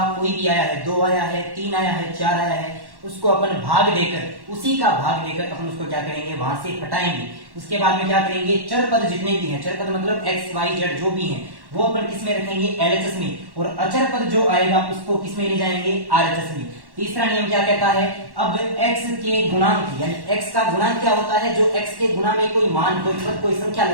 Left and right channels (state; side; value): late; left; 1.1 ms